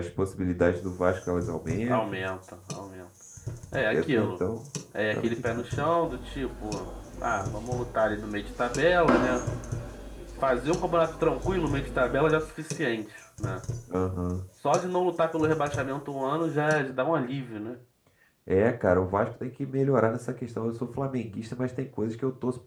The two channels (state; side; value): identical; both; correlation 1.00